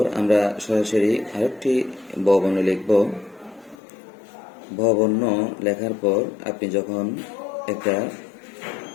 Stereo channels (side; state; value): right; drops out; at 3.8 s